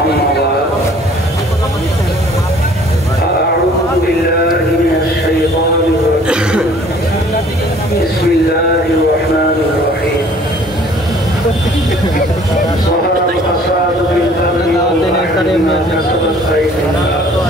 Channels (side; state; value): both; normal; correlation 0.54